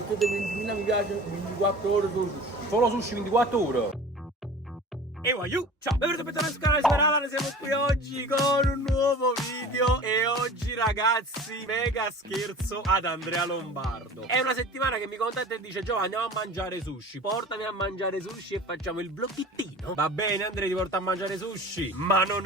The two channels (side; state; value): both; normal; correlation 0.40